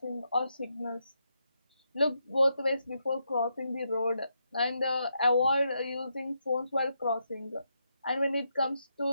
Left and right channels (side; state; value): both; inverted; correlation -0.82